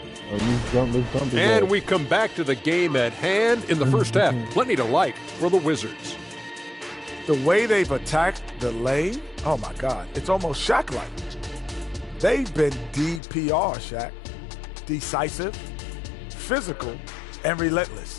And we come back to the game at hand in the first half. Plenty to like for the Wizards. The way they've attacked the lane, oh my God, it's almost Shaq-like. They've been DPR, Shaq. Decisive, physical, and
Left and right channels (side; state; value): right; drops out; at 13.2 s